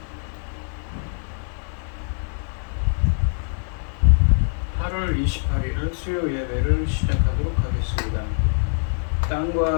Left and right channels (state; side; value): silent; right; 60 dB below the other